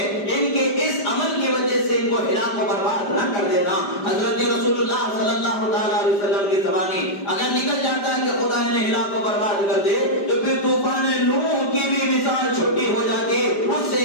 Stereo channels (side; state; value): right; late; 5.0 ms